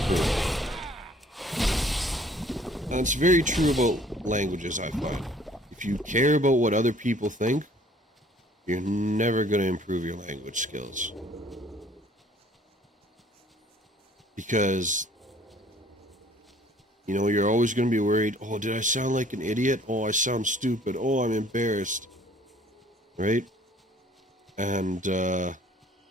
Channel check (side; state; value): both; normal; correlation 0.56